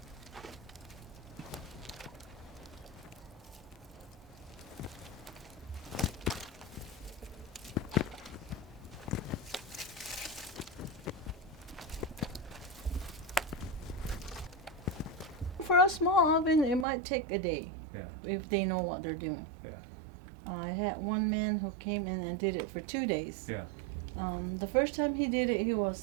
For a small oven, it might take a day, Yeah. if they know what they're doing. Yeah. I had one man who came in and did it for 2 days. Yeah. The first time he did it, he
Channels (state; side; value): drops out; left; at 16.9 s